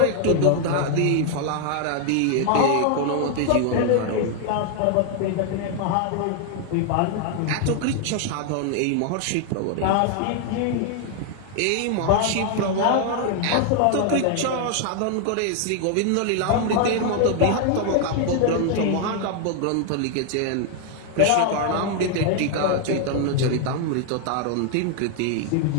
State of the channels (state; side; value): different; both; correlation 0.00